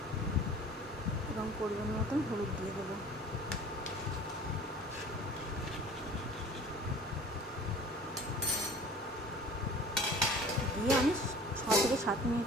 এবং পরিমাণ মতন হলুদ দিয়ে দেবো। দিয়ে আমি 6 থেকে 7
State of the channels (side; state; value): both; normal; correlation 0.46